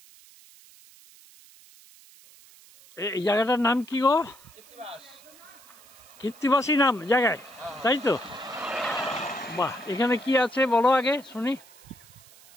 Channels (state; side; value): noise; right; hiss, 24 dB below the sound